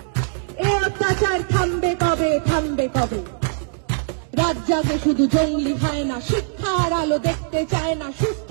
এ অত্যাচার থামবে কবে, থামবে কবে? রাত জাগে শুধু জঙ্গলি হয় না, শিক্ষার আলো দেখতে চায় না, সুস্থ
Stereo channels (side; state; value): left; silent; digital silence